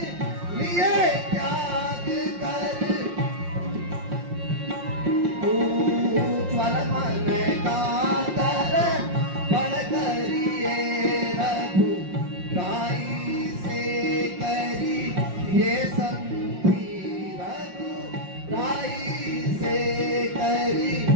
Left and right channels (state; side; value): late; left; 5.6 ms